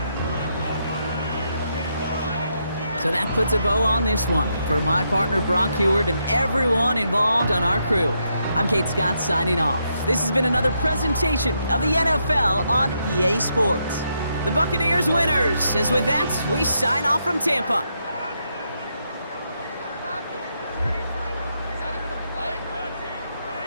So that puts a bow on this one. For my partner Brock Heward and everyone involved on our crew, I'm Kate Scott signing off. This has been another presentation of the NFL on EA Sports. The Buccaneers winners, as with that, we sign off from Tampa.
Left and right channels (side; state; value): both; inverted; correlation -0.79